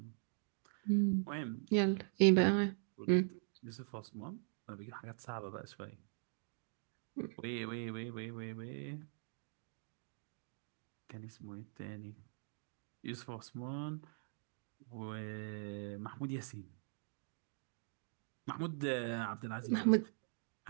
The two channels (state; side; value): silent; left; digital silence